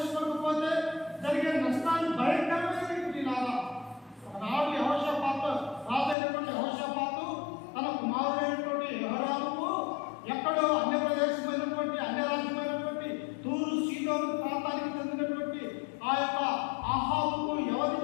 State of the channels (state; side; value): drops out; right; at 6.2 s